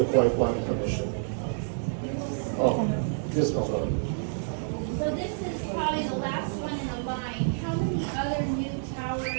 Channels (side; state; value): left; silent; digital silence